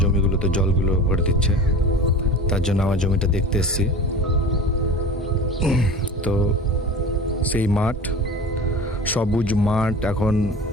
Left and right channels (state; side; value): normal; both; correlation 0.35